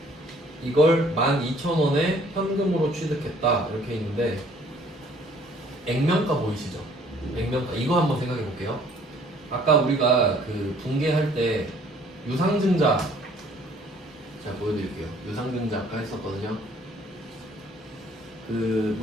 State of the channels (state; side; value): normal; both; correlation 0.58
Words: 이걸 12,000원에 현금으로 취득했다 이렇게 있는데 액면가 보이시죠? 액면가. 이거 한번 생각해 볼게요. 아까 우리가 그 분계할 때 유상증자 제가 보여드릴게요. 유상증자 아까 했었거든요. 그